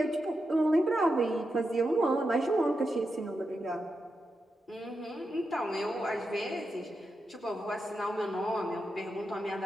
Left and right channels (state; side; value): normal; both; correlation 0.87